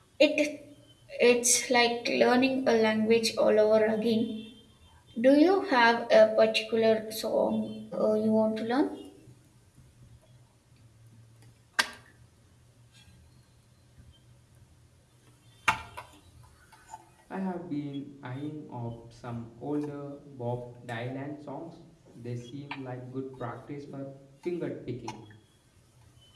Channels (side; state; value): both; identical; correlation 1.00